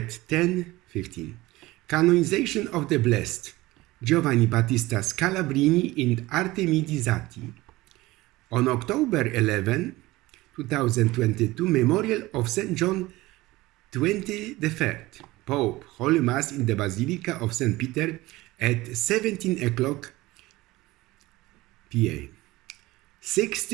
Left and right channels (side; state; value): left; quieter; 19.2 dB